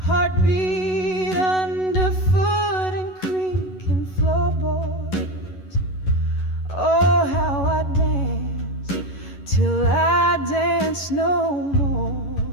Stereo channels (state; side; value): late; right; 11 ms